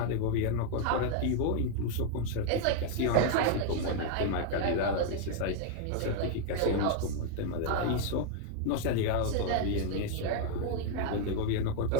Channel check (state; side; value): different; both; correlation 0.00